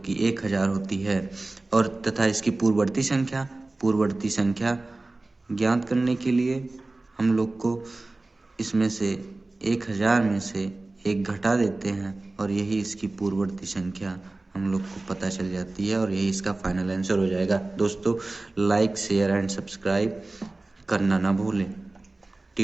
1000 होती है। और तथा इसकी पूर्ववर्ती संख्या ज्ञात करने के लिए हम लोग को इसमें से 1000 में से एक घटा देते हैं और यही इसकी पूर्ववर्ती संख्या हम लोग को पता चल जाती है, और यही इसका फाइनल आंसर हो जाएगा। दोस्तों, लाइक शेयर एंड सब्सक्राइब करना ना भूलें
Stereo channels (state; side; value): quieter; left; 3.1 dB